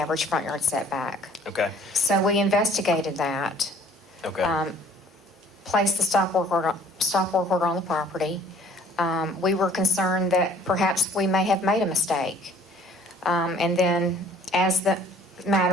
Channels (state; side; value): normal; both; correlation 0.55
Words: front yard setback. Okay. So we investigated that. Okay. Placed the stop work order on the property. We were concerned that perhaps we may have made a mistake. And then as the